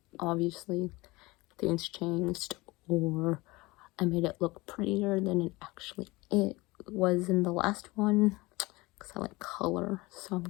obviously things changed, or I made it look prettier than it was in the last one, because I like color. So I'm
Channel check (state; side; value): quieter; right; 22.1 dB